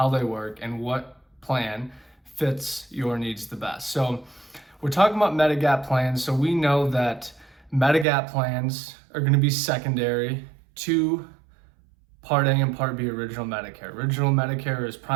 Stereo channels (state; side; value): drops out; left; at 8.1 s